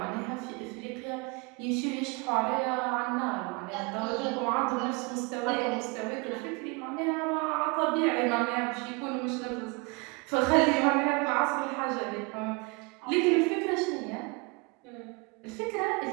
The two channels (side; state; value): left; quieter; 28.8 dB